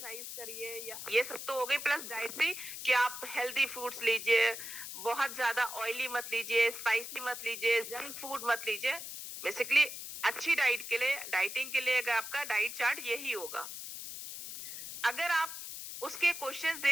करिए, या ये सब तो हो गई। प्लस डाइटरी कि आप हेल्दी फूड्स लीजिए, बहुत ज्यादा ऑयली मत लीजिए, स्पाइसी मत लीजिए, जंक फूड मत लीजिए। बेसिकली अच्छी डाइट के लिए, डाइटिंग के लिए अगर आपका डाइट चार्ट यही होगा। अगर आप उसके क्वेश्चंस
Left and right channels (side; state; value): left; noise; hiss, 8 dB below the sound